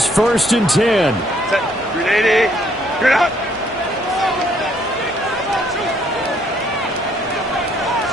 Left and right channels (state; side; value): normal; both; correlation 0.67